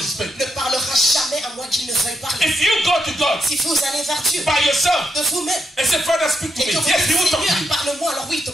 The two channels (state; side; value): normal; both; correlation 0.79